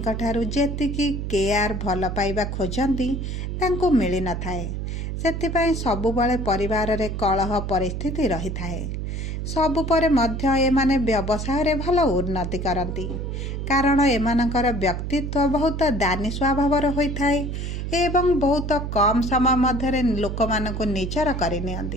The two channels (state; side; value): noise; right; hum, 4 dB below the sound